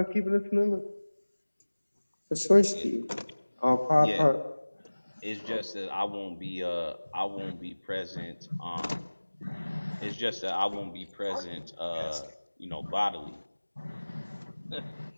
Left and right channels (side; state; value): both; inverted; correlation -1.00